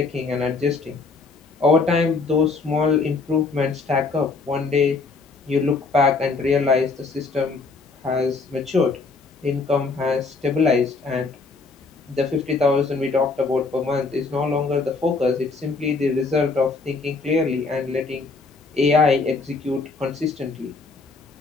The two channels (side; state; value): right; quieter; 4.1 dB